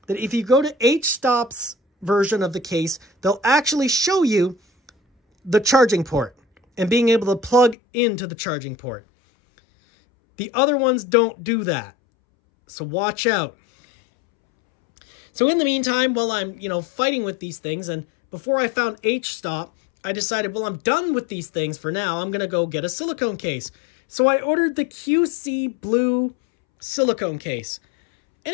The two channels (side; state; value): right; drops out; at 7.8 s